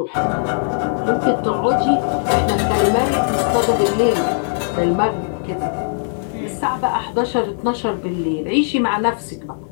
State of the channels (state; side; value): silent; right; digital silence